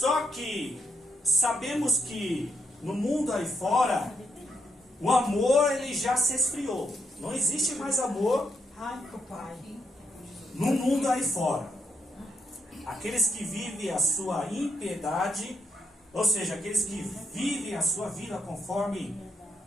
que sabemos que no mundo aí fora o amor ele já se esfriou. Não existe mais amor no mundo aí fora. Aqueles que vivem a sua impiedade, ou seja, aqueles que vivem a sua vida conforme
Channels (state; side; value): normal; both; correlation 0.80